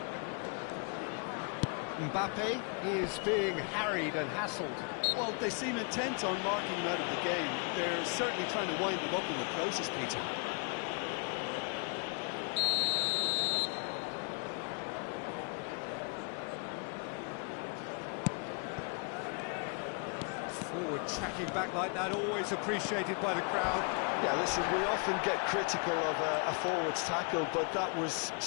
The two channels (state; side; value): quieter; right; 37.4 dB